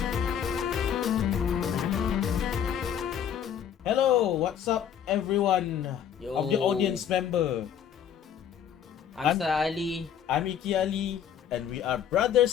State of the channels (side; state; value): right; quieter; 8.8 dB